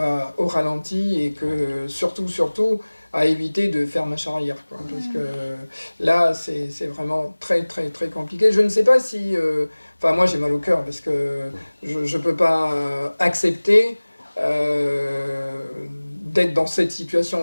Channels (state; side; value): inverted; both; correlation -1.00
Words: au ralenti et que, surtout, à éviter de faire marche arrière, quoi. Parce que là, c'est vraiment très, très, très compliqué. Je ne sais pas si... moi, j'ai mal au cœur parce que je ne peux pas accepter d'être dans cette